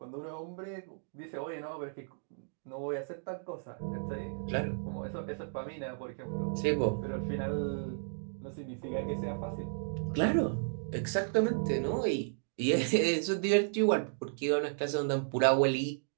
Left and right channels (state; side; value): silent; left; digital silence